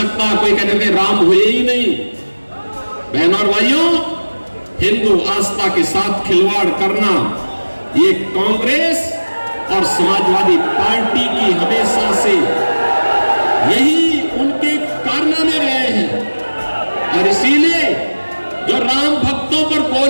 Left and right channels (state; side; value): inverted; both; correlation -1.00